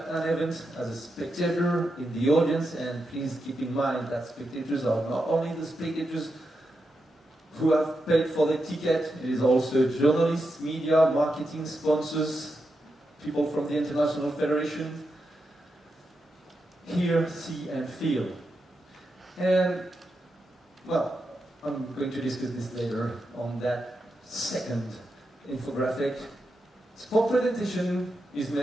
an event as a spectator in the audience, and please keep in mind that spectators are not only the spectators who have paid for the ticket, it is also journalists, media, marketing, sponsors, people from the International Federation. Hear, see, and feel. And, well, I'm going to discuss this later on that second infographic. Sport presentation is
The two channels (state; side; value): normal; both; correlation 0.87